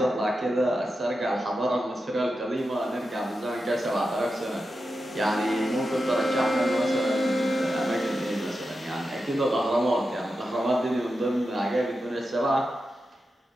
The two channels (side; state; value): both; normal; correlation 0.90